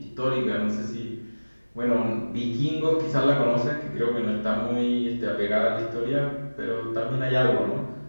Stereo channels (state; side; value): inverted; both; correlation -1.00